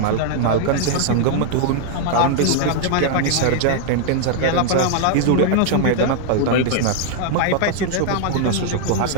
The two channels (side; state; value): both; different; correlation 0.00